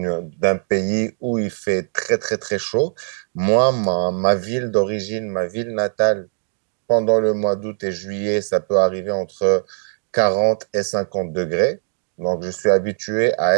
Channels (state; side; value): silent; left; 65 dB below the other